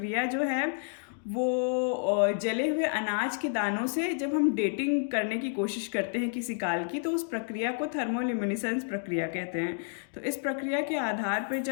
जो है वो जले हुए अनाज के दानों से जब हम डेटिंग करने की कोशिश करते हैं किसी काल की तो उस प्रक्रिया को थर्मोल्यूमिनेसेंस प्रक्रिया कहते हैं। तो इस प्रक्रिया के आधार पर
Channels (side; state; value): right; silent; digital silence